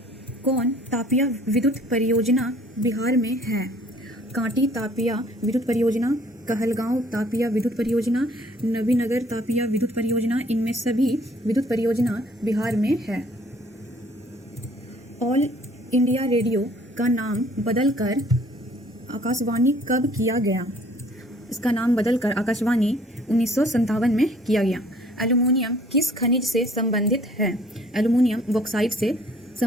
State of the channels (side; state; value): both; normal; correlation 0.57